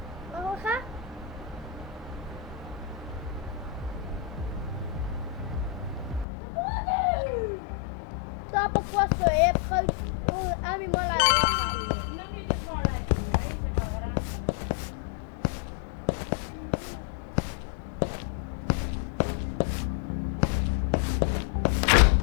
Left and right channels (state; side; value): drops out; right; at 6.2 s